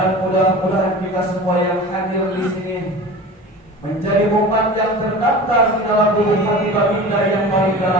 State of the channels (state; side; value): normal; both; correlation 0.35